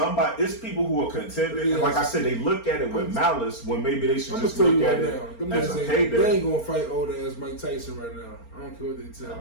people who are contending. And like I said, they look at it with malice when maybe they should just look at it as a payday. They ain't going to fight old ass Mike Tyson right now. I don't care what they tell me. I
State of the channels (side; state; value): right; late; 4.4 ms